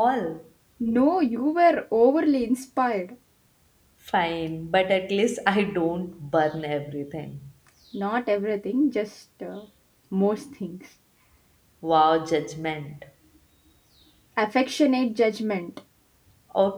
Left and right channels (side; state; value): both; identical; correlation 1.00